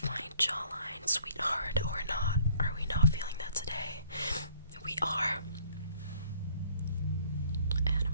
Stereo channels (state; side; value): inverted; both; correlation -0.58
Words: jawline, sweetheart, or not? Are we not feeling that today? We are. And a